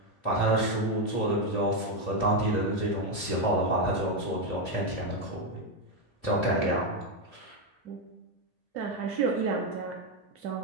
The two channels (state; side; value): late; right; 2.8 ms